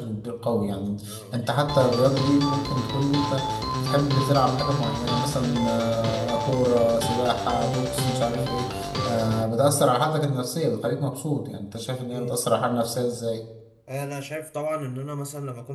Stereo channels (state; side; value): identical; both; correlation 1.00